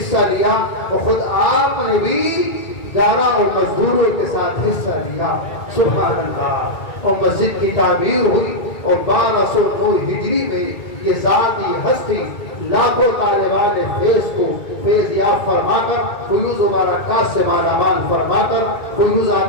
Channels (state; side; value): late; right; 2.2 ms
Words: لیا اور خود آپ نے بھی گارا اور مزدوروں کے ساتھ حصہ لیا۔ سبحان اللہ، اور مسجد کی تعمیر ہوئی، اور 1209 ہجری میں یہ ذاتی ہستی لاکھوں طالبان فیض کو فیض یاب فرما کر، فیوز و برکات سے مالا مال فرما کر،